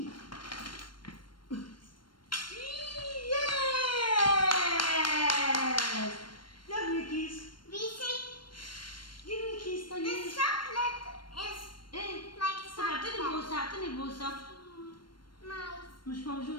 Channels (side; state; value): right; late; 0.72 ms